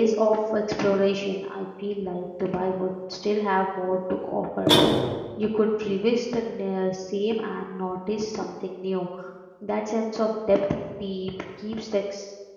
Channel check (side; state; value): both; identical; correlation 1.00